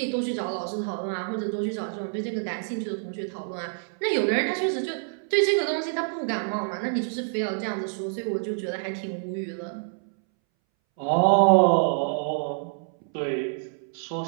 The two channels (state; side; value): silent; left; 60 dB below the other